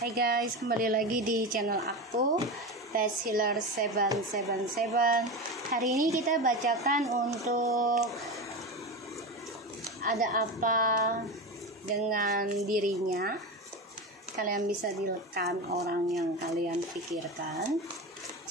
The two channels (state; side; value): normal; both; correlation 0.22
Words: guys, kembali lagi di channel aku Best Healer 777. Hari ini kita bacakan untuk ada apa dengan dirinya. Kalian bisa direkam orang yang kalian pikirkan.